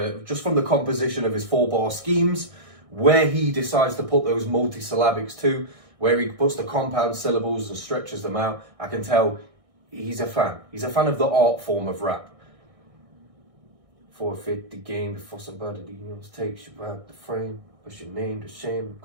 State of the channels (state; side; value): late; left; 1.6 ms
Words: composition of his 4-bar schemes, where he decides to put those multisyllabics to, where he puts the compound syllables and stretches them out. I can tell he's a fan. He's a fan of the art form of rap. Forfeit the game before somebody takes you out the frame. Push your name to shame.